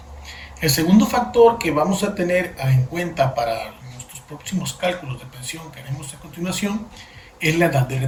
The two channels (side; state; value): both; identical; correlation 1.00